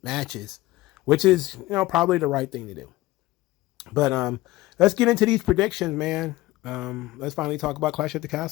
matches, which is, probably the right thing to do. But let's get into these predictions, man. Let's finally talk about Clash at the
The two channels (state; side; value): quieter; right; 18.3 dB